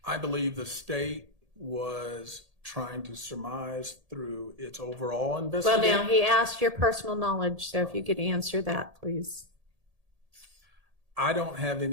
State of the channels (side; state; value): left; late; 1.8 ms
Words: I believe the state was trying to surmise through its overall investigation. Well, now he asked your personal knowledge, so if you could answer that, please. I don't have